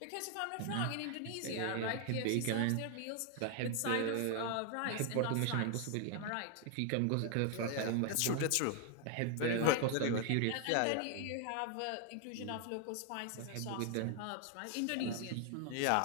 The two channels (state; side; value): different; both; correlation 0.00